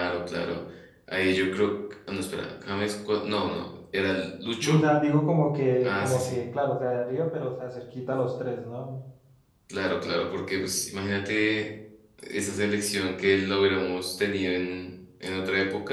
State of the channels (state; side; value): identical; both; correlation 1.00